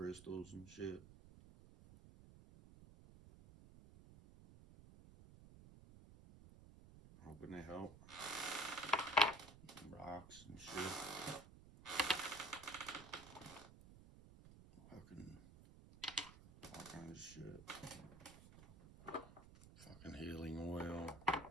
crystals and shit. Hoping they help. Rocks and shit. Fucking all kinds of shit. Fucking healing oil.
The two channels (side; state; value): right; noise; rumble, 17 dB below the sound